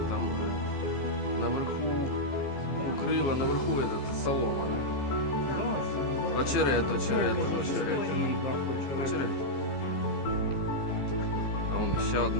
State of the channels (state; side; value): late; right; 15 ms